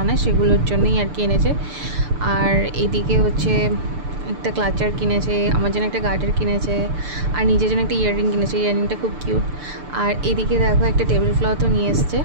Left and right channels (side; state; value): left; late; 6.8 ms